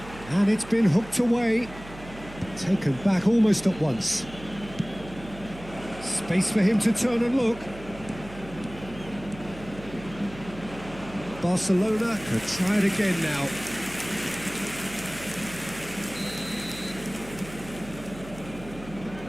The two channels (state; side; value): noise; right; hum, 16 dB below the sound